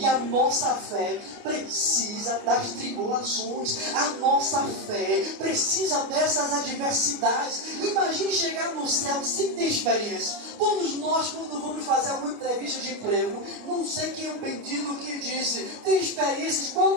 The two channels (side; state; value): left; late; 29 ms